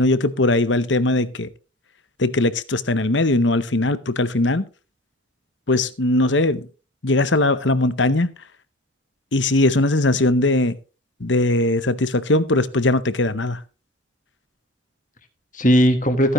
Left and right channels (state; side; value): normal; both; correlation 0.37